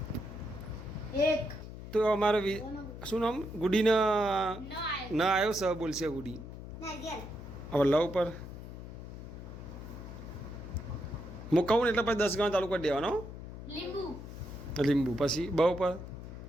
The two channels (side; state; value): left; noise; hum, 11 dB below the sound